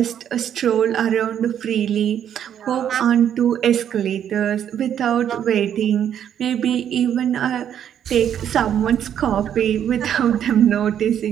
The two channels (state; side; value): quieter; left; 9.5 dB